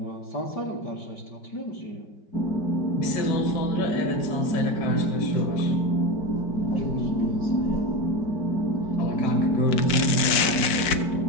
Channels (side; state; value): right; late; 5.6 ms